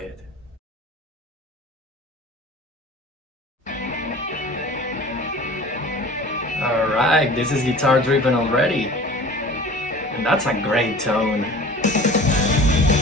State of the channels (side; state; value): both; normal; correlation 0.41